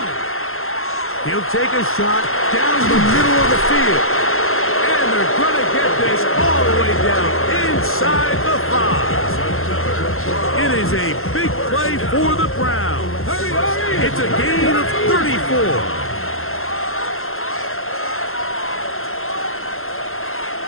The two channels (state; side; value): late; right; 0.61 ms